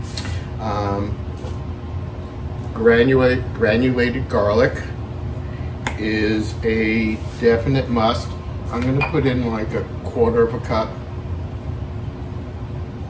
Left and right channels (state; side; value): identical; both; correlation 1.00